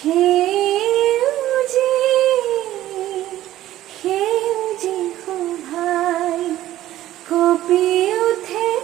সেউজি শোভাই কঁপি উঠে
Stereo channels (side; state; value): left; quieter; 14.0 dB